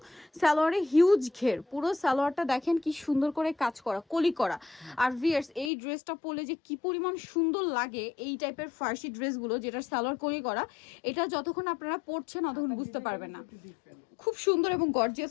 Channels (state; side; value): drops out; right; at 5.7 s